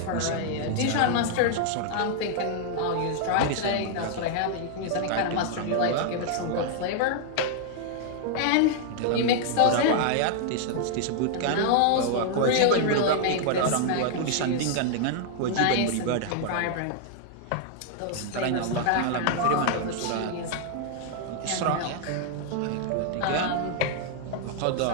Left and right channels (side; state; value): both; different; correlation -0.01